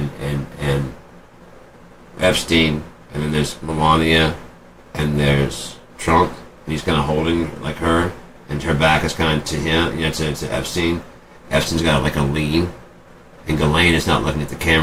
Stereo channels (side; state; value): both; identical; correlation 1.00